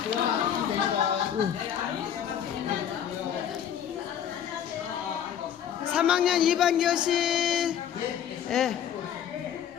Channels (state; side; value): quieter; right; 9.3 dB